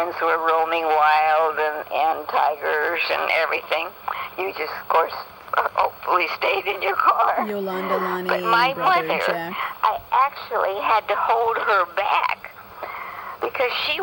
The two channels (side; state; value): both; identical; correlation 1.00